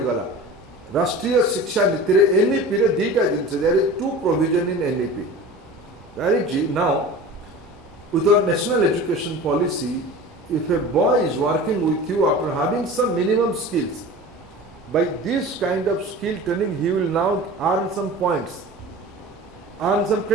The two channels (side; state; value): both; normal; correlation 0.37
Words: गला। राष्ट्रीय शिक्षा नीति रे एनईपी रे दीटा जिनस, there is 2 provision in NEP. That is, now with our national education policy, if a boy is working with you after having some minimum skills, by this kind of skill training he will now earn some points, earn some